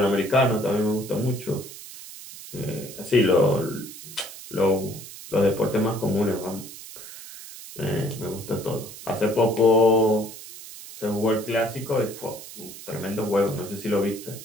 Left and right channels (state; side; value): noise; right; hiss, 14 dB below the sound